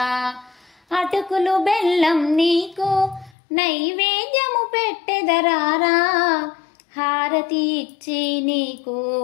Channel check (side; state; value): right; drops out; at 3.4 s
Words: అటుకులు బెల్లం నీకు నైవేద్యము పెట్టెదరారా, హారతి ఇచ్చి నీకు